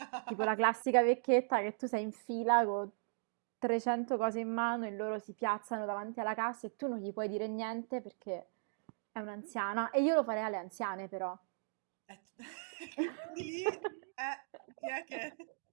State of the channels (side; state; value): left; silent; digital silence